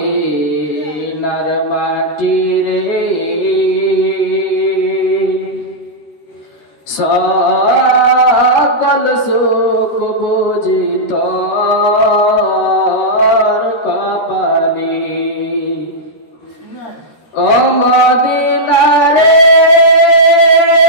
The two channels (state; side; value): late; right; 13 ms